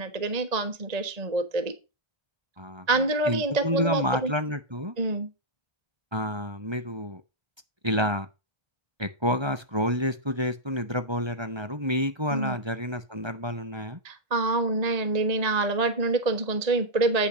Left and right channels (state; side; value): late; left; 1.3 ms